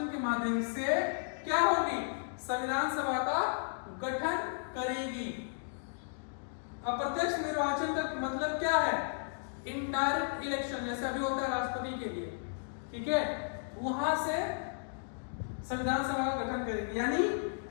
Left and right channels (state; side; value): silent; right; digital silence